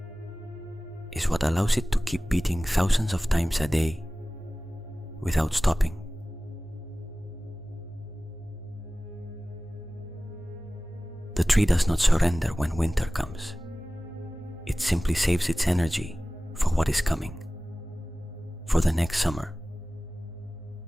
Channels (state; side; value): normal; both; correlation 0.97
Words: is what allows it to keep beating thousands of times a day without stopping. The tree does not surrender when winter comes. It simply saves its energy for what is coming, for the next summer,